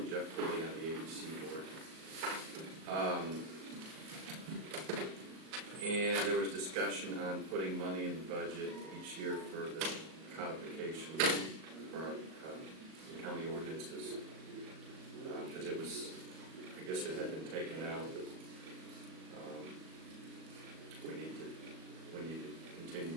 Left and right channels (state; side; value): late; left; 38 ms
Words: Jeff Pulley on the ABC board. And there was discussion on putting money in the budget each year for the codification for our county ordinances. Because it was, I guess it had been taken out, but we need to continue